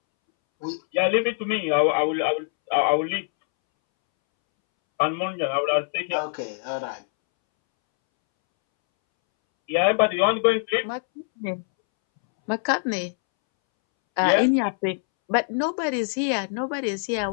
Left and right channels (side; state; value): right; silent; 63 dB below the other